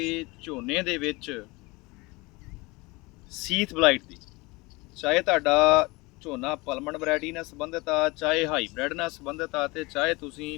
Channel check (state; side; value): quieter; right; 24.2 dB